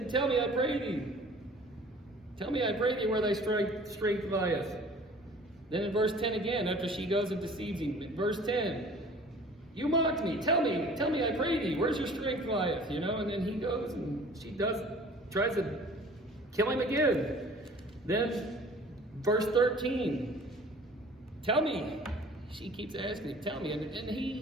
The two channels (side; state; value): both; normal; correlation 0.48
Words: tell me, I pray thee. Tell me, I pray thee, where thy strength lieth. Then in verse 10 again, after she goes and deceives him, verse 10, you mocked me. Tell me, I pray thee, where's your strength lieth? And then he goes and she tries to kill him again. Then verse 13, tell me. She keeps asking him, tell me. And